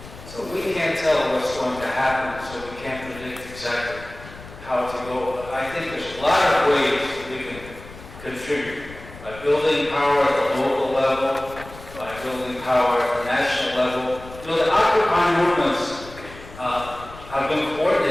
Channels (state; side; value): noise; left; rumble, 17 dB below the sound